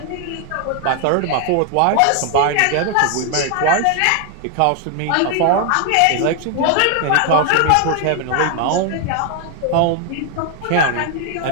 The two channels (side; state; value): both; different; correlation 0.00